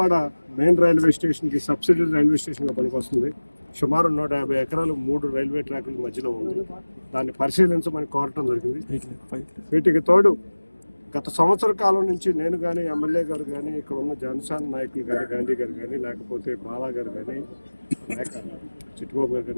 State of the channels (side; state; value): both; inverted; correlation -1.00